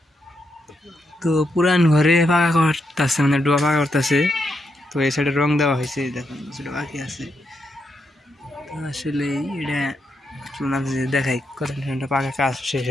তো পুরান ঘরে পাকা করতেছে, মানে ডোয়া পাকা করতেছে। তো এই সাইডে রং দেওয়া হয়েছে, দেখুন সেটা বাকি আছে। তো আসলে এটা দেখাই কতটা পাকা কাজ শেষ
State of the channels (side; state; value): both; normal; correlation 0.82